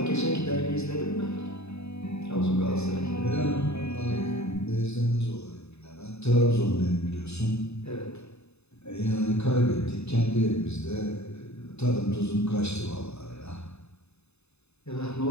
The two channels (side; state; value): right; late; 0.80 ms